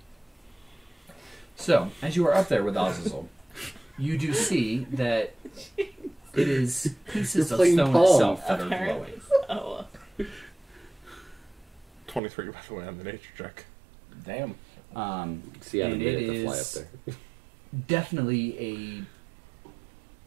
So, as you are up there with Azazel, you do see that it is pieces You're of playing stone Pong. itself that are Apparently. glowing. Oh. 23, by the way, on the nature check. Damn. See, I had a And minute it to fly up is there. definitely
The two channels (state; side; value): drops out; left; at 12.2 s